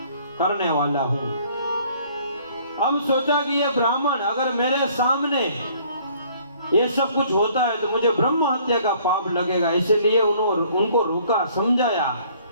करने वाला हूँ। हम सोचा कि ये ब्राह्मण अगर मेरे सामने ये सब कुछ होता है तो मुझे ब्रह्म हत्या का पाप लगेगा, इसलिए उनको रोका, समझाया।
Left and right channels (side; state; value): both; inverted; correlation -0.58